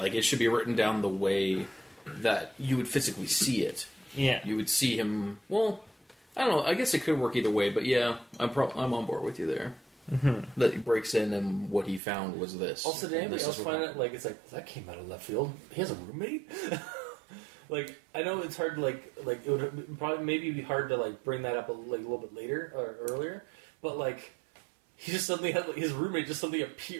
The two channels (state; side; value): drops out; left; at 12.0 s